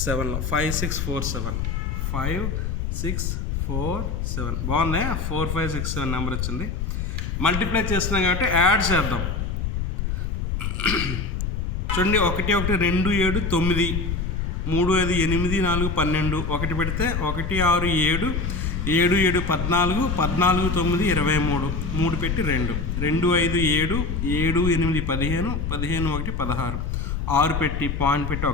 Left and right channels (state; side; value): noise; left; rumble, 2 dB below the sound